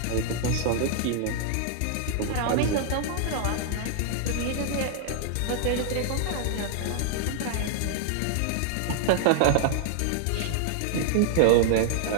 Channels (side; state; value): both; different; correlation -0.01